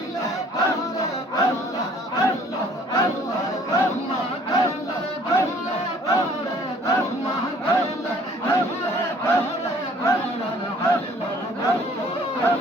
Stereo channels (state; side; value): normal; both; correlation 0.56